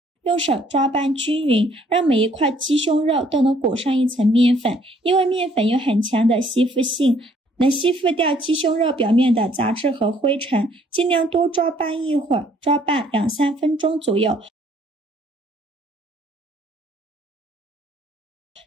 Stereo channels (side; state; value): both; normal; correlation 0.63